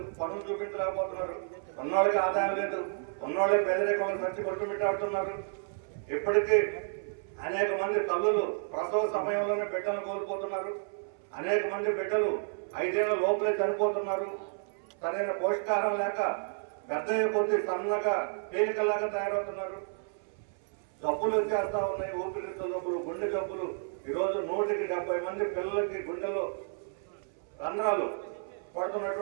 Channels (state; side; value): silent; left; 57 dB below the other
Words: పనులు చూపించలేకపోతున్నారు. ఉన్నవాళ్ళకి ఆదాయం లేదు, ఉన్నవాళ్ళే పేదరికంలో సచ్చి కొట్టుమిట్టాడుతున్నారు. ఇప్పటికీ అనేక మంది తల్లులు ప్రసవ సమయంలోనే బిడ్డలను కోల్పోతున్నారు. అనేక మంది బిడ్డలు 5 ఏళ్ల లోపలే చనిపోతున్నారు. సరైన పోషకాహారం లేక పెద్ద కొద్ది సన్నగా తేలికలాగా తయారవుతున్నారు. జబ్బులు వచ్చేస్తా ఉన్నాయి, ఊపిరితిత్తుల జబ్బులు, గుండె జబ్బులు. ఈరోజు 170 మంది పిల్లలకి గుండెలో రంధ్రాలు